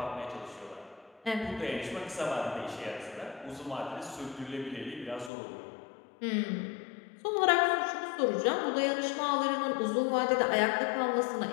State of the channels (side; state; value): right; drops out; at 5.3 s